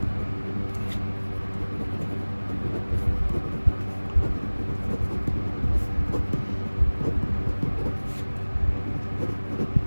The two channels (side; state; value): both; inverted; correlation -1.00